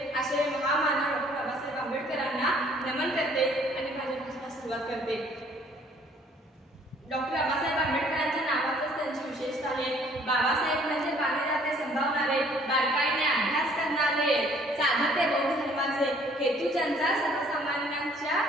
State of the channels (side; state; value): both; normal; correlation 0.59